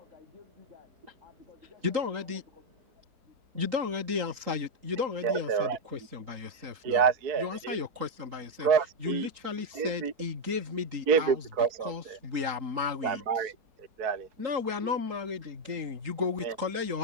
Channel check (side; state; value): left; late; 3.8 ms